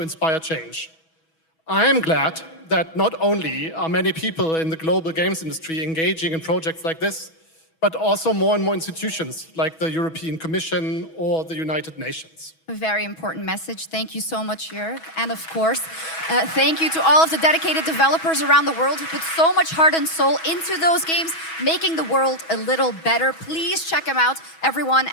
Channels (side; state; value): right; late; 6.2 ms